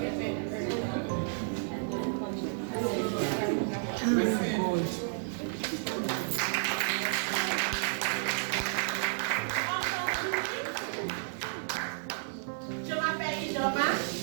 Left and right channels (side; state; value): left; silent; digital silence